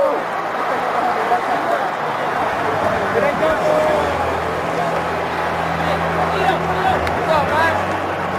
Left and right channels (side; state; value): both; identical; correlation 1.00